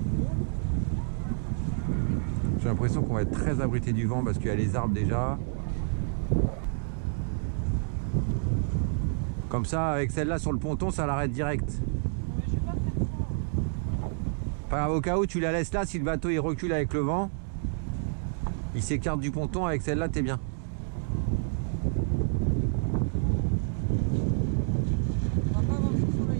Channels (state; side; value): silent; left; digital silence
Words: J'ai l'impression qu'on va être très abrité du vent parce qu'il y a les arbres déjà. Comme ça, avec celle-là sur le ponton, ça l'arrête direct. Mais je vais pas faire ça. Pas grave, au cas où tu la laisses là, si le bateau il recule avec le vent, il s'écarte du ponton, avec celle-là t'es bien. On va pas avoir chaud